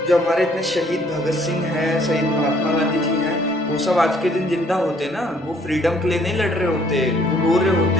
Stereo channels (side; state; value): both; normal; correlation 0.63